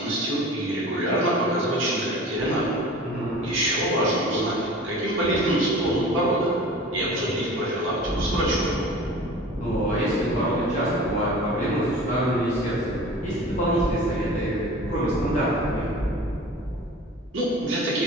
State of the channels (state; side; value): normal; both; correlation 0.40